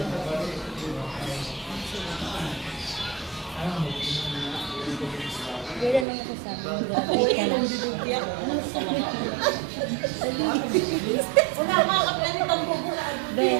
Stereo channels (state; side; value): drops out; left; at 6.1 s